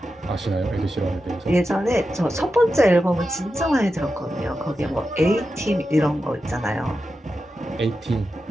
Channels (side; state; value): both; normal; correlation 0.90